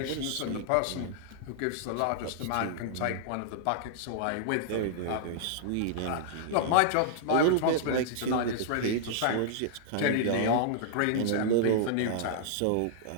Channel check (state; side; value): different; both; correlation -0.01